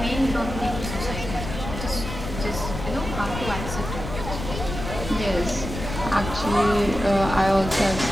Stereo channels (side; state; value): left; noise; rumble, 7 dB below the sound